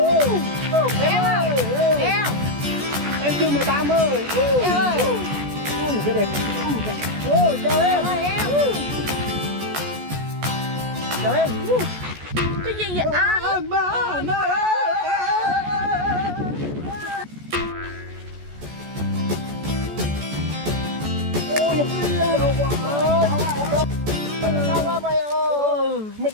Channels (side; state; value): left; late; 14 ms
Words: Em ơi, Em. em chưa 18 ơi. Em ơi. Cái đẹp. Ôi trời Em ơi. ơi em. Chào em. Cái gì vậy anh? Sao quá mày ơi? Mày